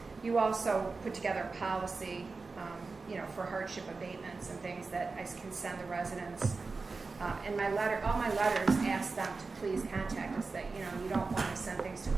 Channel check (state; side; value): quieter; left; 4.1 dB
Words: You also put together a policy, for hardship abatements and things that I can send the residents And all my letters ask them to please contact us, that, you don't want to send things to